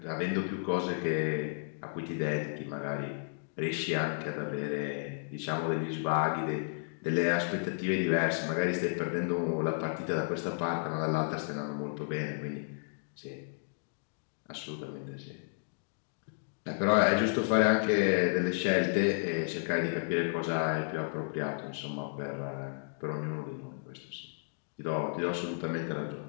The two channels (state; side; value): silent; right; digital silence